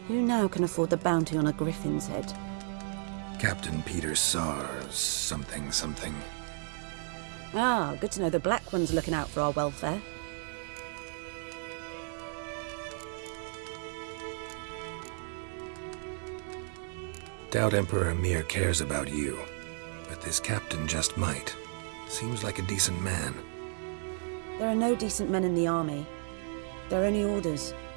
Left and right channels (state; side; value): silent; left; 56 dB below the other